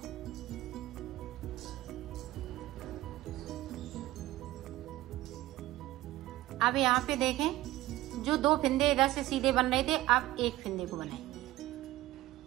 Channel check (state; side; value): quieter; left; 16.6 dB